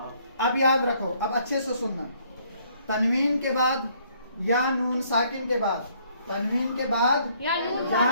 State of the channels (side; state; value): both; inverted; correlation -0.65